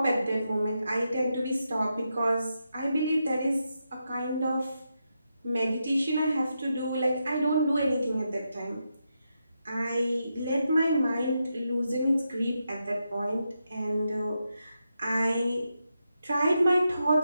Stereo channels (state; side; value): inverted; both; correlation -0.85